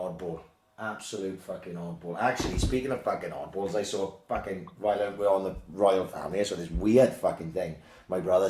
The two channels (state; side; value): identical; both; correlation 1.00